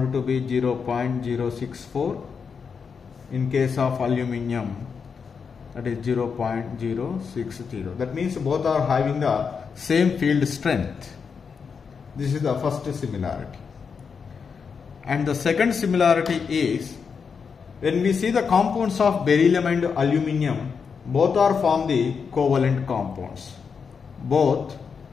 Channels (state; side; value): quieter; right; 5.9 dB